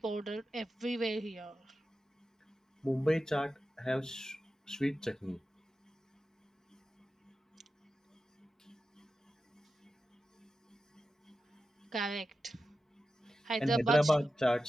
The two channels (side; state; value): both; normal; correlation 0.92